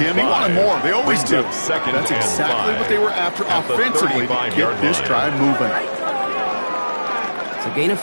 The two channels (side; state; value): both; inverted; correlation -1.00